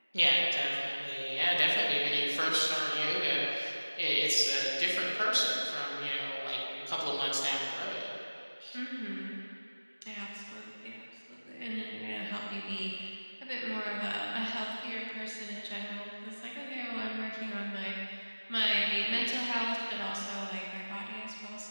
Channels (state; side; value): inverted; both; correlation -1.00